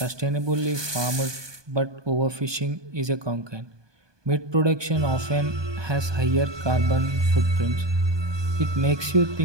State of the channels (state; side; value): late; left; 1.2 ms